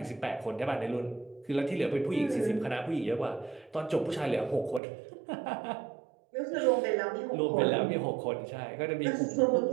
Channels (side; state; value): left; drops out; at 4.8 s